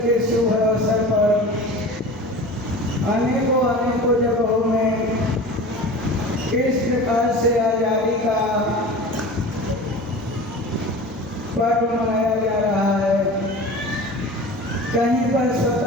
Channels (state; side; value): normal; both; correlation 0.36